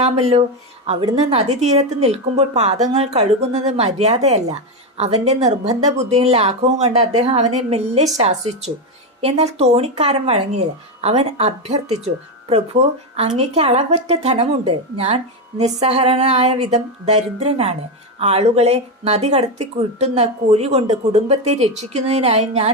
അവിടുന്ന് നദീതീരത്ത് നിൽക്കുമ്പോൾ പാദങ്ങൾ കഴുകുന്നത് മര്യാദയല്ല. അവന്റെ നിർബന്ധ ബുദ്ധിയും ലാഘവവും കണ്ട് അദ്ദേഹം അവനെ മെല്ലെ ശാസിച്ചു. എന്നാൽ തോണിക്കാരൻ വഴങ്ങിയില്ല. അവൻ അഭ്യർത്ഥിച്ചു, പ്രഭു, അങ്ങേക്ക് അളവറ്റ ധനമുണ്ട്. ഞാൻ നിസ്സഹരനായ വിധം ദരിദ്രനാണ്. ആളുകളെ നദി കടത്തി കിട്ടുന്ന കൂലി കൊണ്ട് കുടുംബത്തെ രക്ഷിക്കുന്നതിനായി ഞാൻ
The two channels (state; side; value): normal; both; correlation 0.10